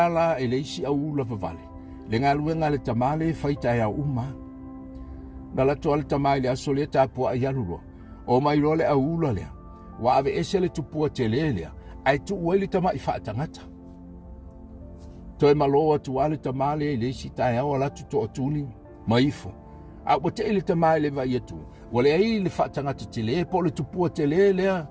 la e leisi au ula vavale. Le ngā luenga le tama le whaitai au uma. Na la toa le tamai le aso le tapua ai aluro. O mai role au ula lea. Wa ave ese le tupua te lelea. Ai tu ue le tamai whaatangata. Toi maloa tu ale tamale le si tai au ala tu to atuli. Maifo. A o te ele tamai le vai atu. Wale ai le whaatangata te le po le tupua te lelea.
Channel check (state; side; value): identical; both; correlation 1.00